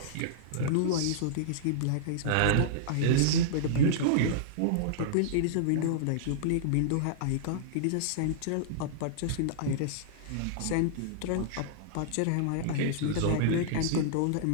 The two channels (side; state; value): both; different; correlation -0.02